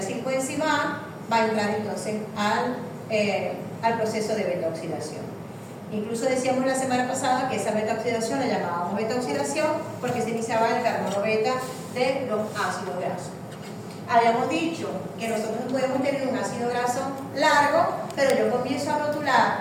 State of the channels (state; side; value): identical; both; correlation 1.00